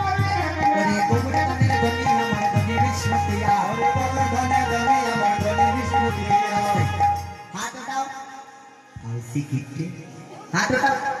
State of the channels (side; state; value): both; identical; correlation 1.00